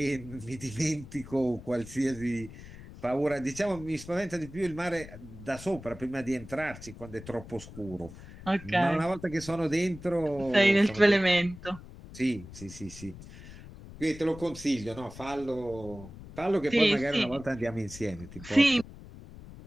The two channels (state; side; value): noise; left; rumble, 16 dB below the sound